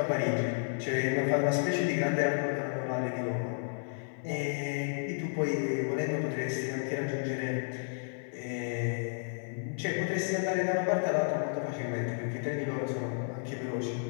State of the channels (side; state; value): right; silent; 56 dB below the other